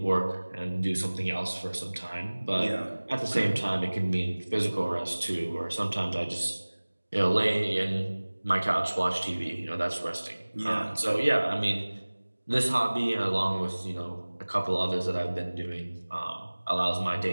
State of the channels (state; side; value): inverted; both; correlation -1.00